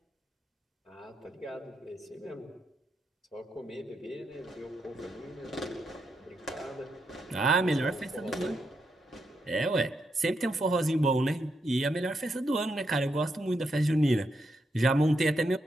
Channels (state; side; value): normal; both; correlation 0.82